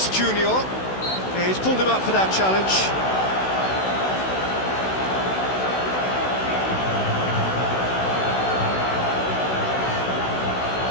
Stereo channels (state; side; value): late; right; 16 ms